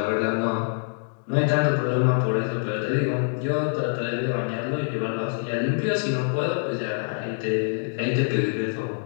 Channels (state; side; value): silent; right; digital silence